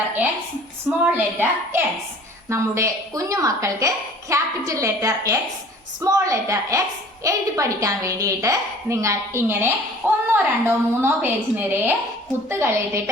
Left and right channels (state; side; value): normal; both; correlation 0.49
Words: X, small letter X. നമ്മുടെ കുഞ്ഞു മക്കൾക്ക് capital letter X, small letter X എഴുതി പഠിക്കാൻ വേണ്ടിയിട്ട് നിങ്ങൾ ഇങ്ങനെ 1, 2, 3 പേജ് നിറയെ